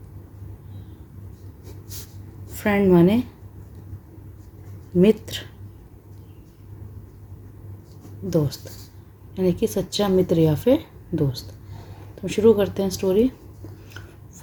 फ्रेंड माने मित्र, दोस्त, यानी कि सच्चा मित्र या फिर दोस्त। तो शुरू करते हैं story.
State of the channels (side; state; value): both; identical; correlation 1.00